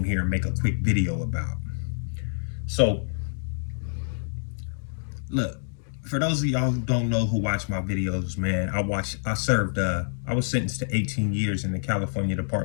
here and make a quick video about. So, look, for those of y'all who don't know who watch my videos, man, I was sentenced to 18 years in the California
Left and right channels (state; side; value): silent; right; digital silence